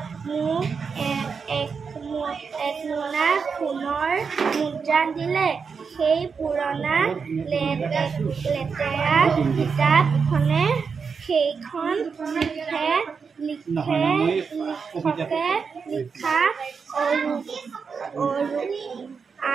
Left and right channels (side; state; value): left; quieter; 5.6 dB